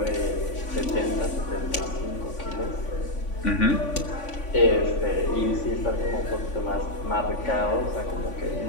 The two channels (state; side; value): late; right; 3.5 ms